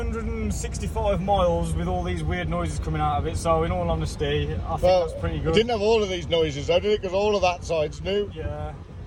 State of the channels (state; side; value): identical; both; correlation 1.00